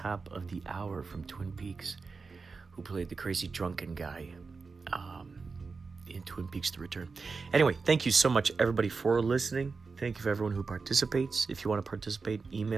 of the hour from Twin Peaks, who played the crazy drunken guy in Twin Peaks: The Return. Anyway, thank you so much, everybody, for listening. Thank you for everyone who participates. If you want to participate,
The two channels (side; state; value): left; quieter; 4.5 dB